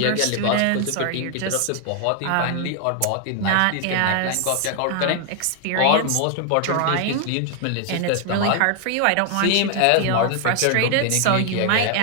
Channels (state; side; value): different; both; correlation 0.00